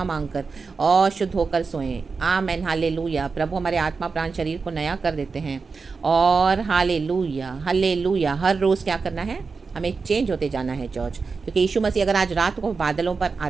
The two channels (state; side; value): quieter; left; 4.7 dB